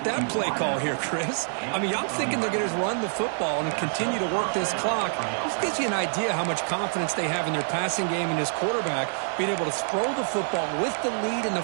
that play call here, Chris? I mean, I'm thinking they're going to run the football and continue to work this clock. This gives you an idea how much confidence they have in their passing game and his quarterback being able to throw the football with the lead in the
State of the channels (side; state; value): left; silent; digital silence